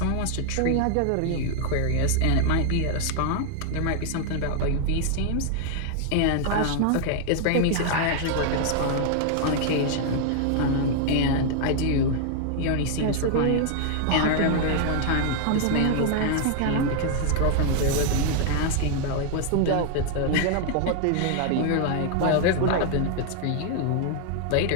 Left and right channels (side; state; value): both; different; correlation 0.00